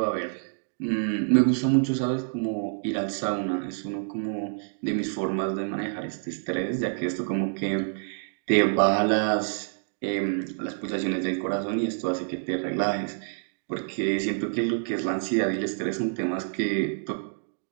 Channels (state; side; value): silent; left; digital silence